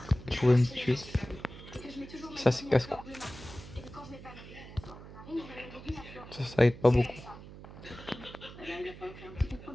Je pouvais me tuer. Ça c'est casse-cou. Ça aide pas beaucoup.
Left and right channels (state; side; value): noise; right; hum, 15 dB below the sound